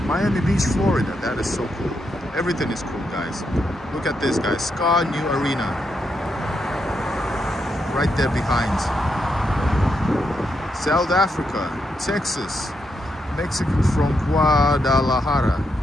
Miami Beach, Florida. That is so cool. Everything is cool, guys. Look at this, guys. Ska New Arena. Right there behind. South Africa, Texas, Mexico from Guadalajara.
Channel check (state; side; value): normal; both; correlation 0.81